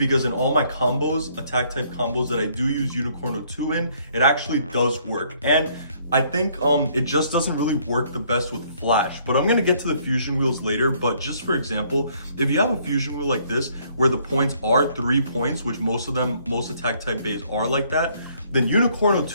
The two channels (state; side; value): inverted; both; correlation -0.65